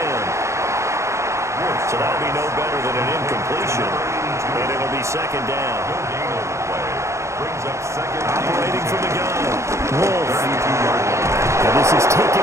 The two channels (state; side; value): late; left; 0.14 ms